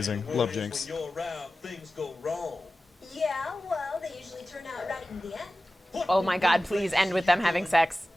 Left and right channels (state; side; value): normal; both; correlation 0.95